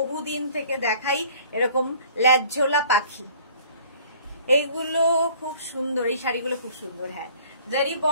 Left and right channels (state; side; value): inverted; both; correlation -0.53